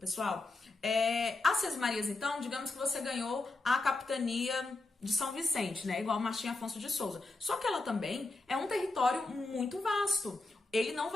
As sesmarias, então, digamos que você ganhou a capitania de São Vicente, né? Igual Martim Afonso de Souza. Só que ela também é um território muito vasto. Ele não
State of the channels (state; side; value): quieter; right; 3.2 dB